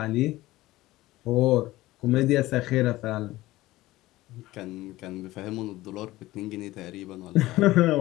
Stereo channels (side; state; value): right; quieter; 17.6 dB